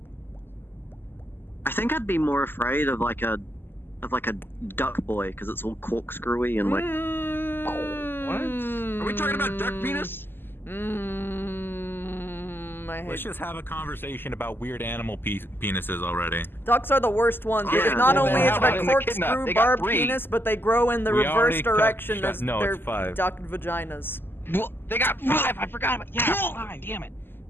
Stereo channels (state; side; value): late; right; 0.10 ms